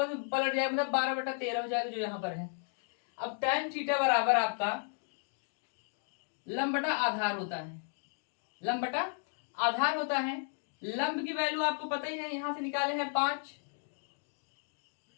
में पलट जाएगा, मतलब 12/13 हो जाएगा जो यहाँ पर है। अब tan थीटा बराबर आपका लंब बटा आधार होता है, लंब बटा आधार होता है। लंब की वैल्यू आपको पता ही है, यहां से निकाले हैं 5,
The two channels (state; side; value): silent; right; 55 dB below the other